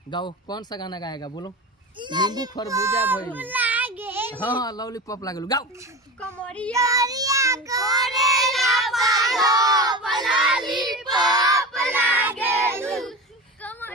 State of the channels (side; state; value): both; normal; correlation 0.28